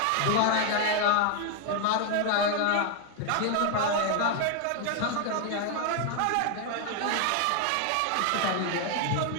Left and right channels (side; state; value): both; different; correlation 0.00